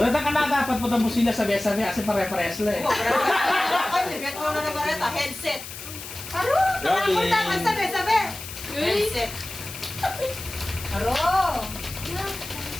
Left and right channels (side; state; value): left; noise; hiss, 11 dB below the sound